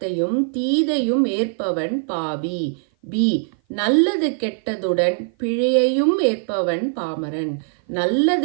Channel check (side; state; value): left; silent; 56 dB below the other